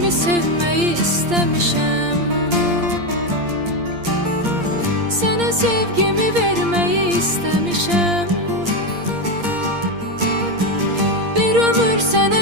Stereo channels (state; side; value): late; left; 8.6 ms